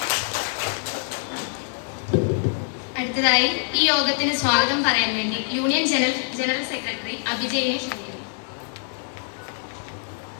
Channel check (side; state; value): right; silent; 56 dB below the other